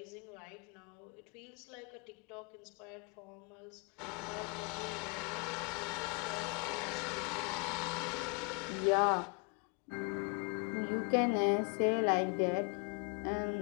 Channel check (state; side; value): quieter; right; 33.0 dB